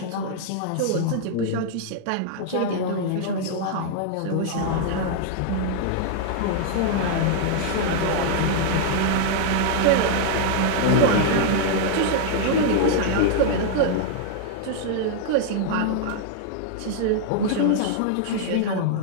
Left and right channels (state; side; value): different; both; correlation -0.01